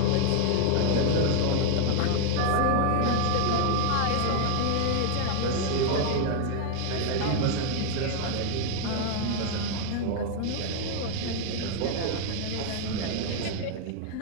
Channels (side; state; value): both; different; correlation 0.00